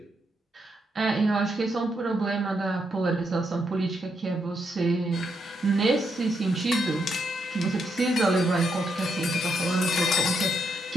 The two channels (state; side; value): normal; both; correlation 0.80